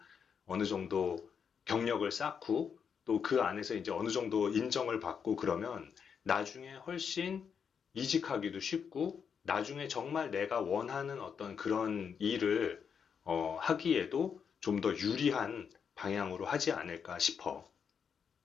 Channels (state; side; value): quieter; right; 6.9 dB